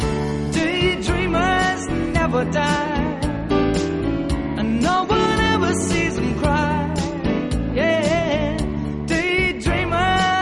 Daydreamers never die, and no one ever sees them cry. Yeah,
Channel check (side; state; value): both; identical; correlation 1.00